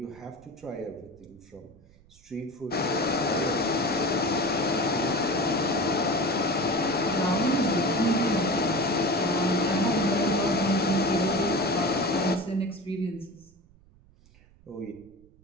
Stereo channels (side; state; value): right; noise; rumble, 28 dB below the sound